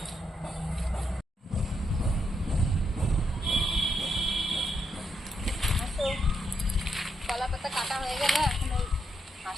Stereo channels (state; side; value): normal; both; correlation 0.80